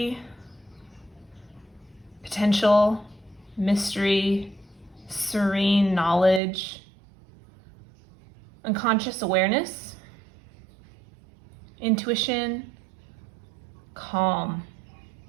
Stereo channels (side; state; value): left; drops out; at 6.4 s